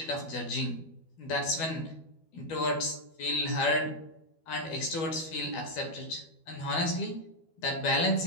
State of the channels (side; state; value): right; late; 12 ms